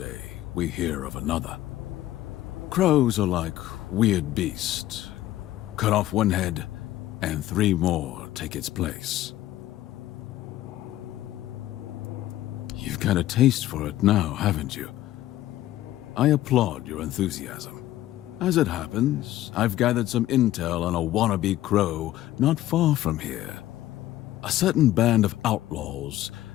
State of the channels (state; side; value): quieter; right; 14.6 dB